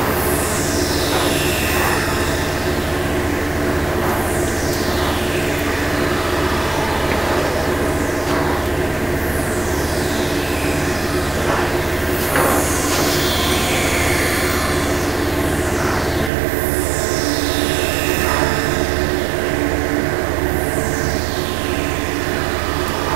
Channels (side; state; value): left; drops out; at 16.3 s